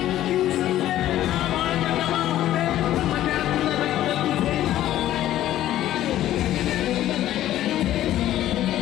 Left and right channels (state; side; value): quieter; right; 13.2 dB